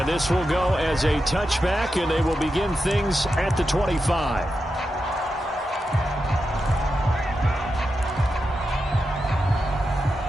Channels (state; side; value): normal; both; correlation 0.89